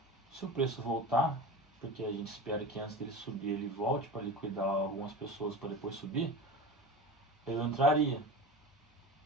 Se o preço voltar, porque a gente espera que antes dele subir ele volte para liquidar algumas pessoas para depois subir, eu entraria.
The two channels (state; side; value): normal; both; correlation 0.30